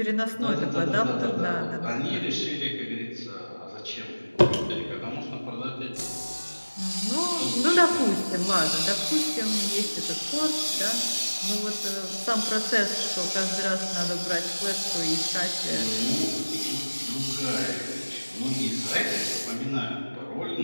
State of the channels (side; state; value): both; inverted; correlation -1.00